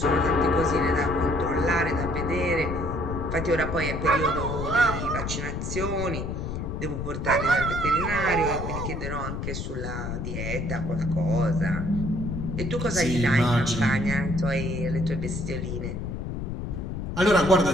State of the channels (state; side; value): noise; left; rumble, 4 dB below the sound